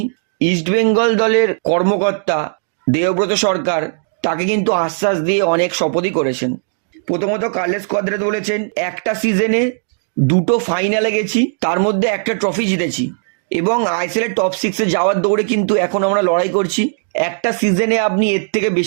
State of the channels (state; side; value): silent; left; digital silence